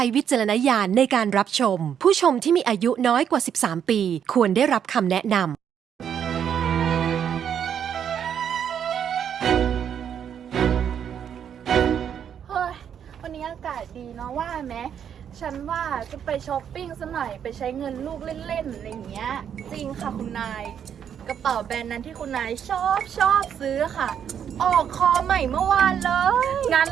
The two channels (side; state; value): left; quieter; 8.6 dB